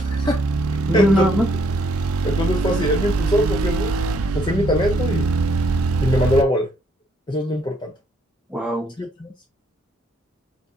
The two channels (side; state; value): both; normal; correlation 0.69